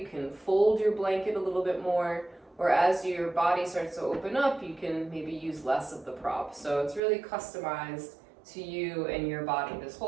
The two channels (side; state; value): left; drops out; at 7.0 s